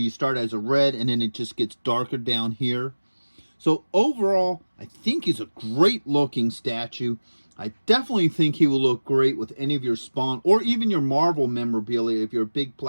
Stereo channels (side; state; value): both; inverted; correlation -1.00